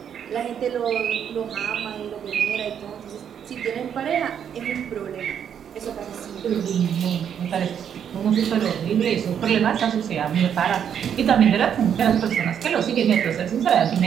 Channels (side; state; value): left; quieter; 8.5 dB